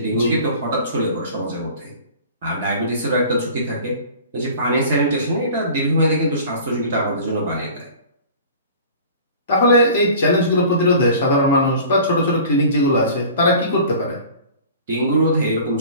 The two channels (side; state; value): both; inverted; correlation -0.43